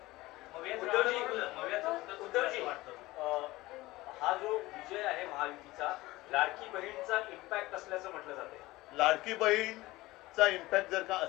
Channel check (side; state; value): right; quieter; 19.2 dB